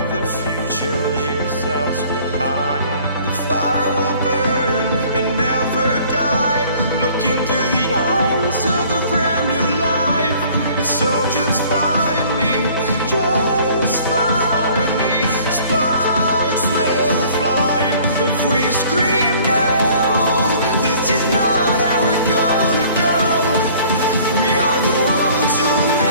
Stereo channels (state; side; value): inverted; both; correlation -0.54